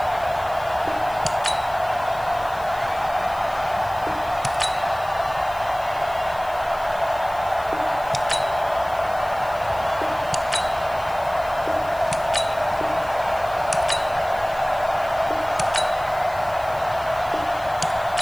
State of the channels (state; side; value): noise; left; hiss, 22 dB below the sound